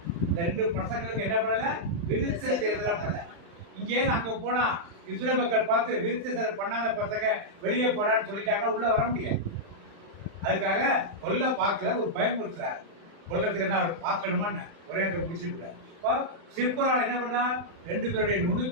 இந்த 2 பசங்களுக்கு என்ன பண்ணல? விருத்த சேதனம் பண்ணல. இங்கே அங்க போனா இஸ்ரேல் மக்கள் பார்த்து விருத்த சேதனம் பண்ணாத பசங்க வெளியே போடான்னு சொல்லிட்டாங்க, உள்ள வர முடியாது. அதுக்காக கொல்ல பார்க்கல, ஒரு பயமுறுத்துறாரு. கொல்லத்துக்கு தான் அவர் பார்க்கணுமான்னு ஒரே அந்த முடிச்சு கூடாது. சிற்பரால் என்ன பண்ணா? 2 பேருடைய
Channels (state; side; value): late; left; 35 ms